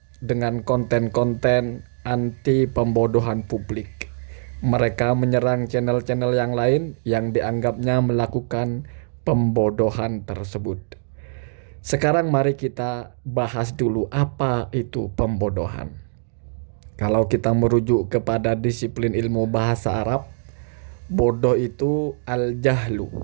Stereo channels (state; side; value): silent; left; digital silence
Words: dengan konten-konten anti pembodohan publik. Mereka menyerang channel-channel yang lain yang dianggapnya melakukan pembodohan tersebut. Sekarang mari kita bahas dulu apa itu pembodohan. Kalau kita merujuk kepada disiplin ilmu bahasa Arab, bodoh itu